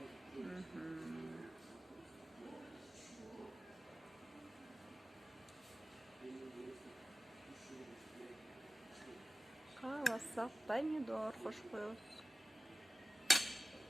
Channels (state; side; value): normal; both; correlation 0.95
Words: кааласак помидор кошуп коебуз.